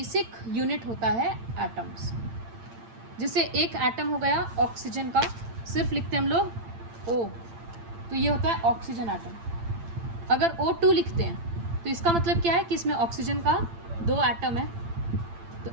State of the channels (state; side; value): late; left; 8.8 ms